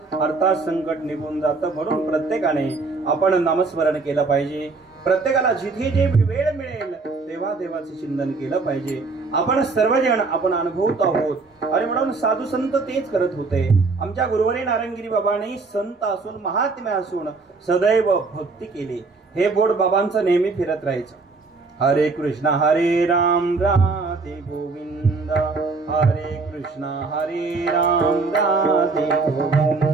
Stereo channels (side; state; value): left; quieter; 4.0 dB